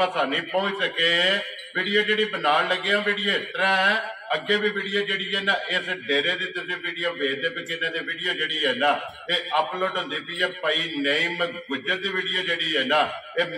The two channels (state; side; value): identical; both; correlation 1.00